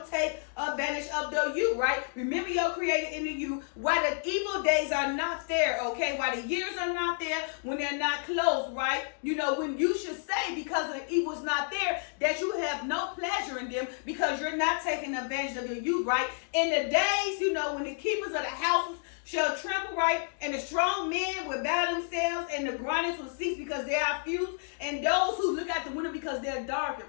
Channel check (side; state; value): right; silent; 58 dB below the other